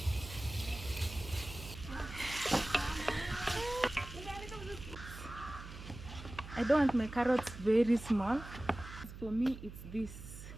I don't want my carrots very small. For me, it's this.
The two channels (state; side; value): noise; right; hum, 12 dB below the sound